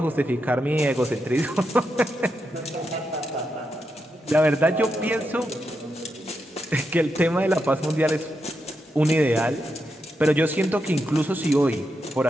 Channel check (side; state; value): both; normal; correlation 0.85